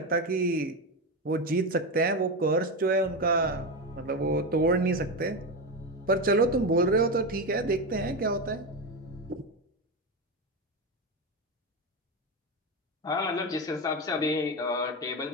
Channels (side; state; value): both; normal; correlation 0.15